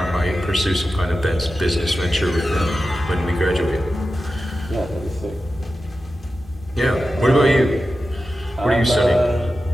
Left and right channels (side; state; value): both; normal; correlation 0.92